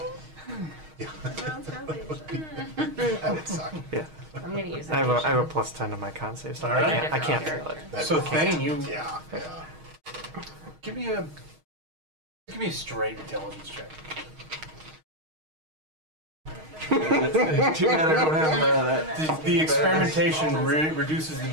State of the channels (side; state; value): left; late; 6.4 ms